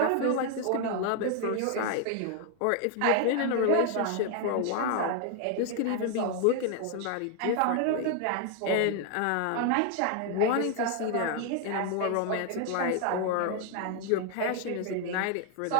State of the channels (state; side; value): different; both; correlation 0.00